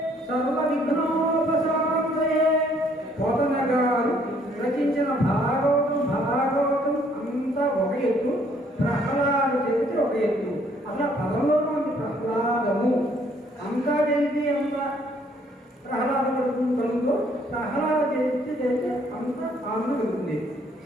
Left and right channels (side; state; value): both; normal; correlation 0.64